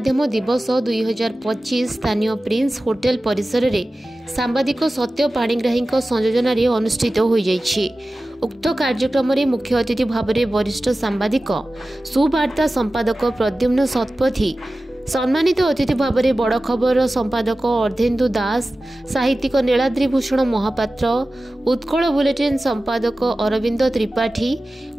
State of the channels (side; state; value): both; normal; correlation 0.96